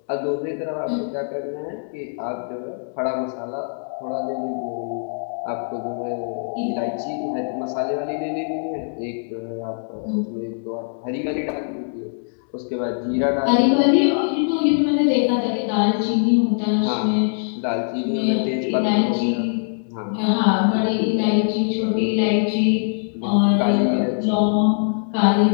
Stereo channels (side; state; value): right; silent; digital silence